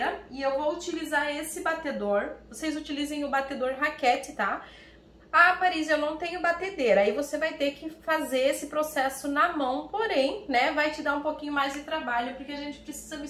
e eu vou utilizar esse batedor. Vocês utilizem o batedor raquete, tá? Ah, Paris, eu não tenho batedeira, aí você vai ter que fazer esse processo na mão, porém, né, vai te dar um pouquinho mais de trabalho, porque a gente precisa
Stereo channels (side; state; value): both; identical; correlation 1.00